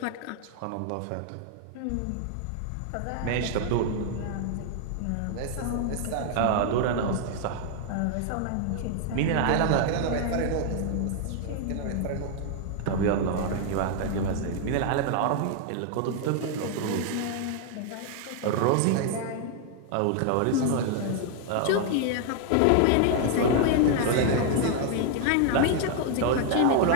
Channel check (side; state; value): both; different; correlation 0.00